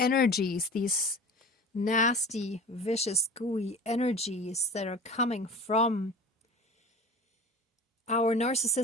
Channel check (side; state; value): both; normal; correlation 0.37